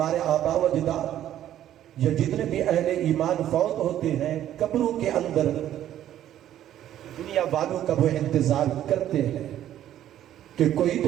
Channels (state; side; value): quieter; left; 11.8 dB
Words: آبا و اجداد یا جتنے بھی اہل ایمان فوت ہوتے ہیں قبروں کے اندر دنیا والوں کا وہ انتظار کرتے ہیں کہ کوئی